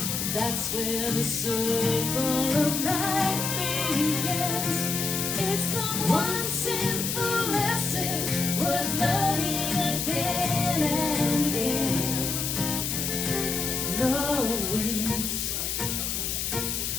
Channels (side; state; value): left; noise; hiss, 1 dB below the sound